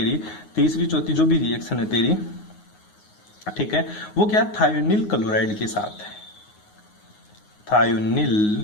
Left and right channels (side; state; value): right; late; 9.5 ms